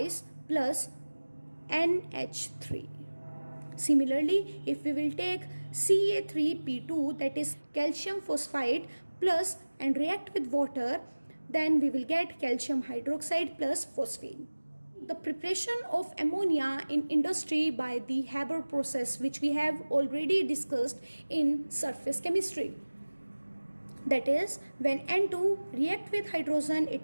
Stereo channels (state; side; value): inverted; both; correlation -1.00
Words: plus NH3. Similarly, if we will take Ca3P2, that is calcium phosphide plus, and react with water, then we will get calcium hydroxide plus phosphine. The preparation of ammonia in industry by the Haber process, which we have already discussed in surface chemistry. That is, when N2 react with hydrogen,